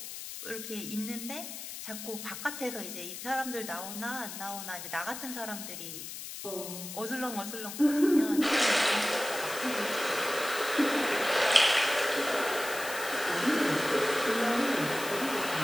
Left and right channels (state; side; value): noise; left; hiss, 9 dB below the sound